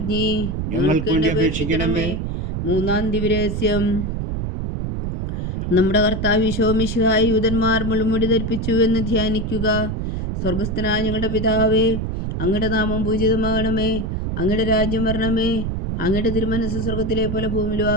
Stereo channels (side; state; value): right; noise; rumble, 3 dB below the sound